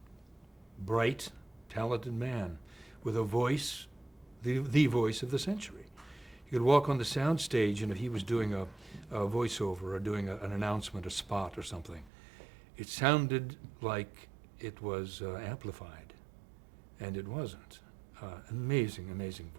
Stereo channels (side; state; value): left; drops out; at 12.1 s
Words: bright, talented man with a voice, the voice of the century. You could walk on the sound stage, and if he was doing a voiceover or doing an announcement, a spot or something, it sounded like it was amplified, and it wasn't. Amazing, amazing